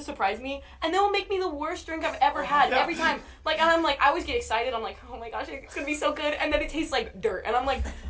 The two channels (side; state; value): both; identical; correlation 1.00